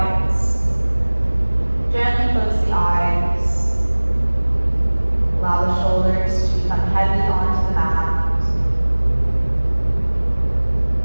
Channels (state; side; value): inverted; both; correlation -1.00